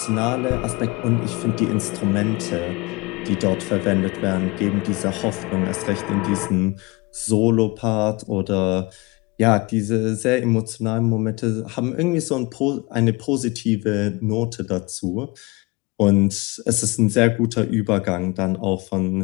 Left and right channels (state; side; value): quieter; right; 24.9 dB